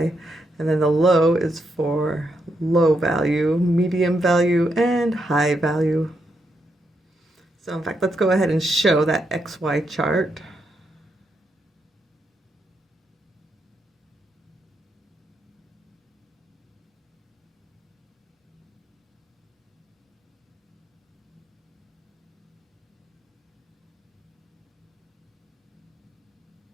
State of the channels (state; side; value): normal; both; correlation 0.81